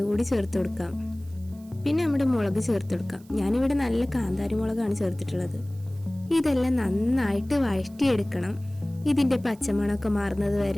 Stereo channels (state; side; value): noise; right; hiss, 28 dB below the sound